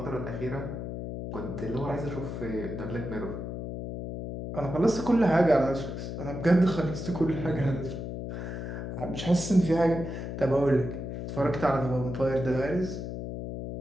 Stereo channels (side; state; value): left; noise; hum, 6 dB below the sound